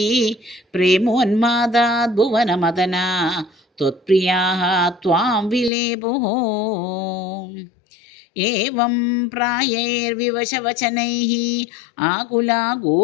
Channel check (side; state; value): right; drops out; at 5.7 s